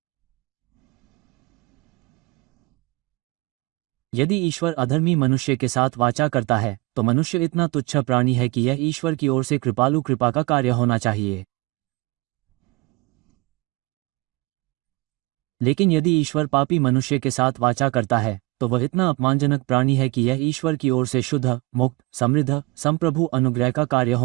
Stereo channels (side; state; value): left; quieter; 21.9 dB